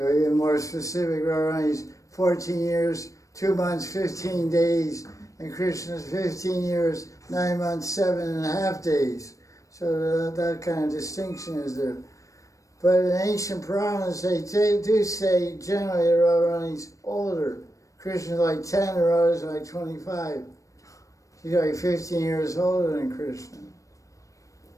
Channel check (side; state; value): right; late; 0.16 ms